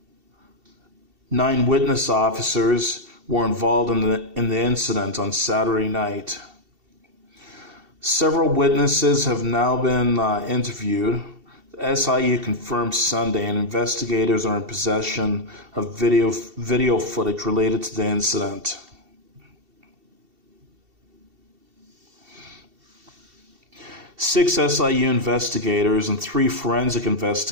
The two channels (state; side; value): late; left; 2.7 ms